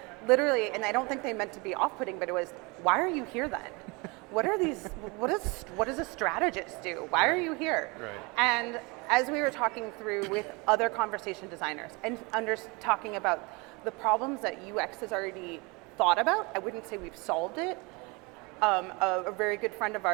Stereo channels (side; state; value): left; quieter; 27.1 dB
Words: literally, and I don't think they meant to be off-putting, but it was, why are you here then? What are these, what does a strategist do? Why are you here? Right. And as we were talking through with other conversation designers and talking about the problems that UX has already thought about, I wouldn't say we've solved it. A very good friend of